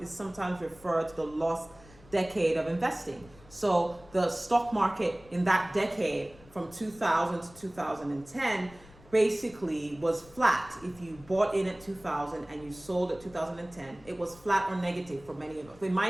sometimes referred to the lost decade of investing. So the stock market in that decade from 2000 to 2010 basically was flat. If you bought in at 2000 and you sold at 2010, it was flat or negative for many of us. In my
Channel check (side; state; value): left; noise; rumble, 23 dB below the sound